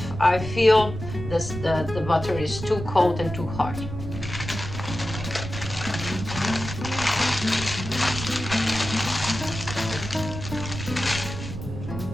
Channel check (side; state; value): right; noise; rumble, 8 dB below the sound